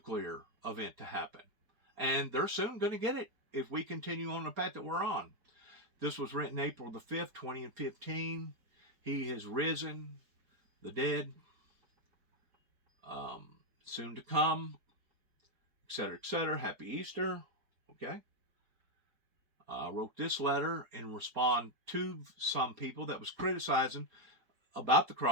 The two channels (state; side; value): late; left; 4.3 ms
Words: event to happen, and they're soon going to get it if we continue on the path that we're on. This was written April the 5th, 2015. He has risen, the dead, soon to come, etc., etc. Happy Easter. Okay. I wrote this letter in response to some people that was criticizing about the